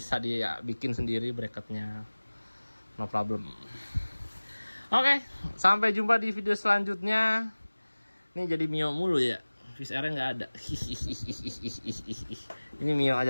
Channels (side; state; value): both; inverted; correlation -1.00